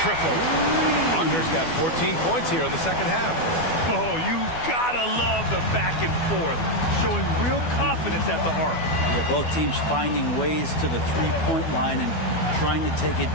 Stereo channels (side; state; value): right; late; 12 ms